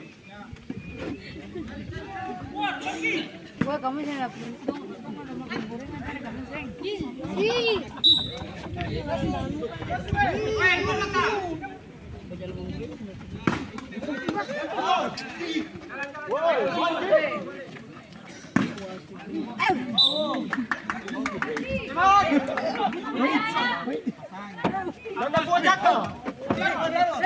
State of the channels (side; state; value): both; identical; correlation 1.00